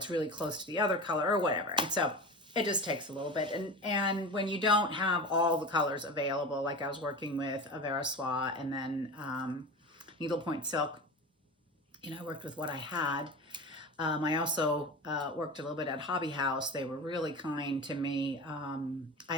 really close to the other color or whatever. And so it just takes a little bit. And when you don't have all the colors available, like I was working with a Vera Soie and then needlepoint silk, you know, I worked with what I had. I also worked a little bit at Hobby House. They were really kind to me. I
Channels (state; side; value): normal; both; correlation 0.30